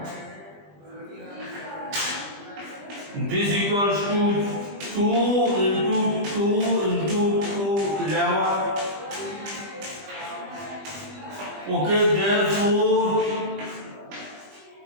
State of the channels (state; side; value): late; left; 20 ms